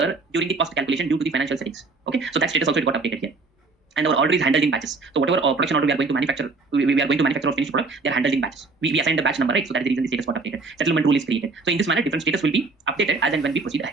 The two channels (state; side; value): quieter; left; 3.9 dB